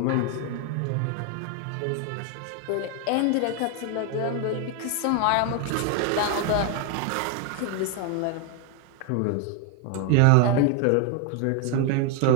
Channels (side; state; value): both; different; correlation 0.01